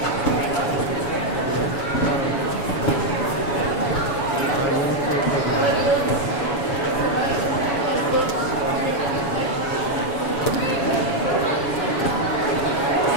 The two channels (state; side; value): late; right; 7.1 ms